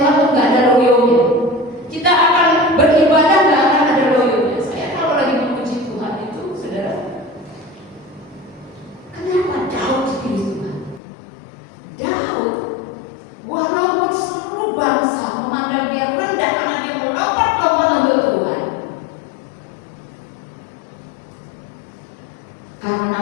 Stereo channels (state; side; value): drops out; right; at 11.0 s